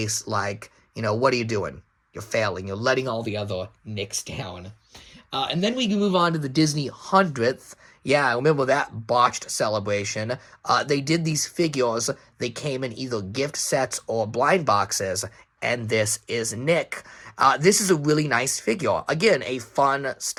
what are you doing? You're failing. You're letting all the other Nicks down. And then we can move on to the Disney 100th. Yeah, I remember that botched celebration. They did these figures. They came in either gift sets or blind boxes, and this is Nick. This is a really nice figure. Again, a fun,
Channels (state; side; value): identical; both; correlation 1.00